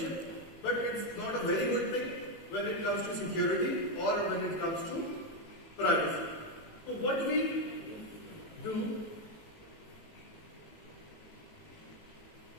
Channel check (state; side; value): late; right; 18 ms